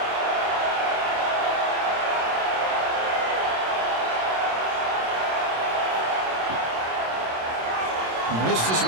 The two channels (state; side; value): late; left; 26 ms